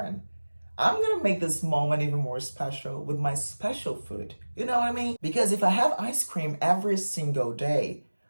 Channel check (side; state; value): both; inverted; correlation -1.00